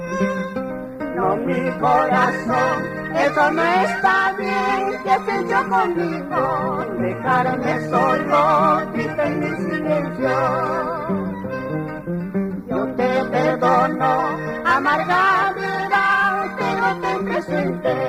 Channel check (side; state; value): both; identical; correlation 1.00